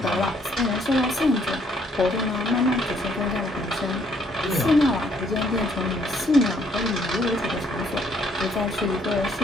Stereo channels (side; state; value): both; normal; correlation 0.67